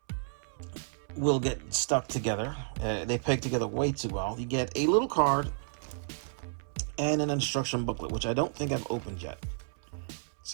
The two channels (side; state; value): left; silent; 57 dB below the other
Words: will get stuck together. They peg together way too well. You get a little card and an instruction booklet, which I don't think I've opened yet.